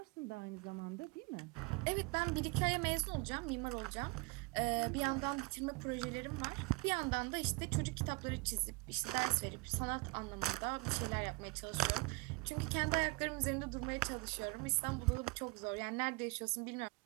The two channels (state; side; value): quieter; left; 26.6 dB